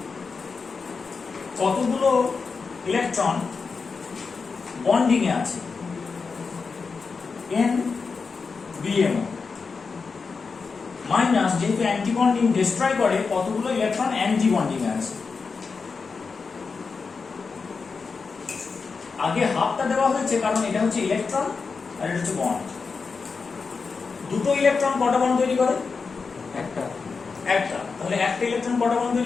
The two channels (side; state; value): right; quieter; 4.9 dB